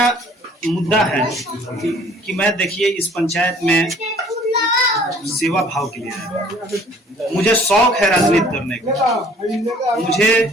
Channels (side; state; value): both; normal; correlation 0.55